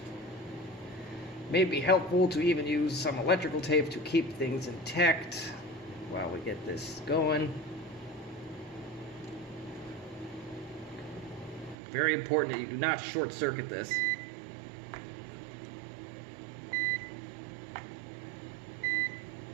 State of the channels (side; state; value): left; drops out; at 11.8 s